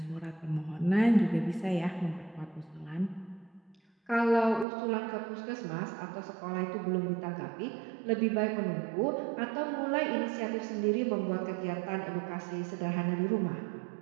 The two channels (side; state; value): left; drops out; at 4.7 s